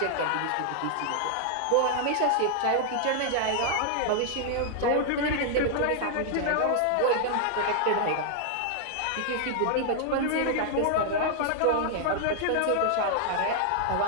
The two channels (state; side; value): different; both; correlation 0.00